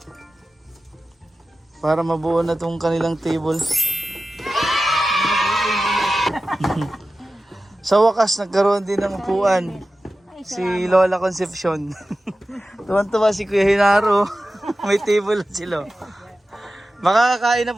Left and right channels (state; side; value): normal; both; correlation 0.94